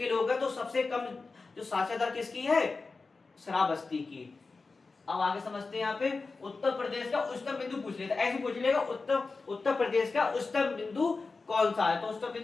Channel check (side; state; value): right; quieter; 4.0 dB